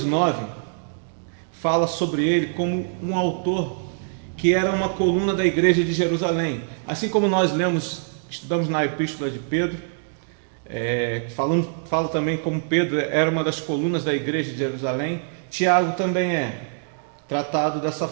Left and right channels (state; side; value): silent; left; digital silence